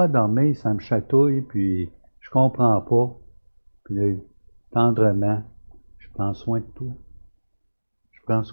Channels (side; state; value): both; inverted; correlation -1.00